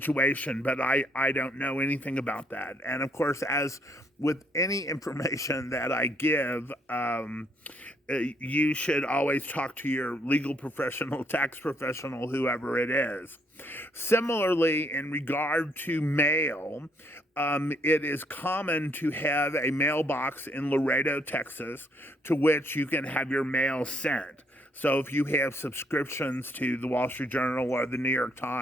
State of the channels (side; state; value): both; normal; correlation 0.69